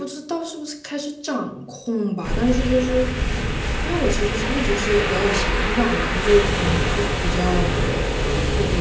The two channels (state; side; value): identical; both; correlation 1.00